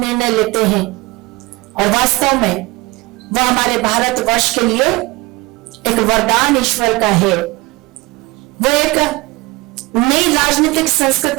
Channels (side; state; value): left; quieter; 22.9 dB